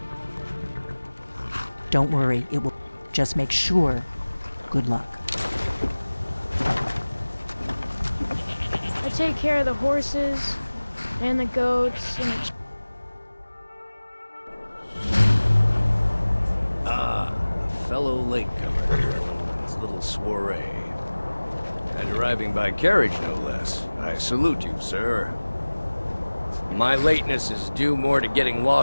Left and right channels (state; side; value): inverted; both; correlation -1.00